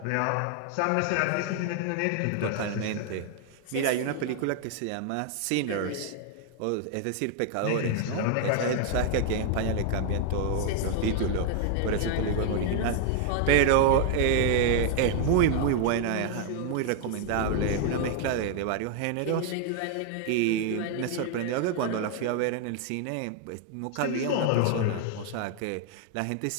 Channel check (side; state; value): both; different; correlation 0.00